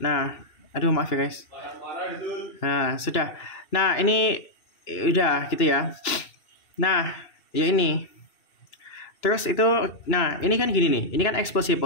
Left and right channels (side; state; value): right; late; 2.6 ms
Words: aduh maaf ya guys. Nah, sudah. Nah, ini udah gitu ya. Nah, ya ini. Terus itu, nah ini kan gini nih. Ini kan X plus Y